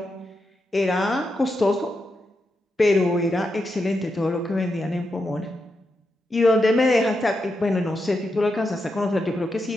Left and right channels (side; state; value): both; normal; correlation 0.85